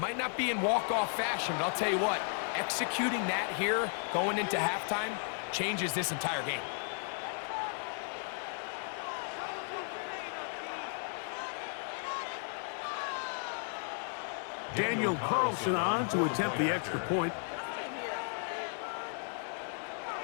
not be in walk-off fashion, but I'll tell you what, executing that here going into halftime changes this entire game. Daniel Carlson on to attempt the extra point.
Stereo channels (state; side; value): silent; right; 55 dB below the other